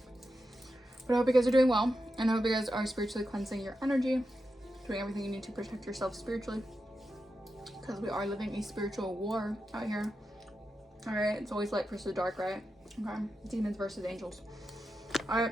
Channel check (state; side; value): normal; both; correlation 0.89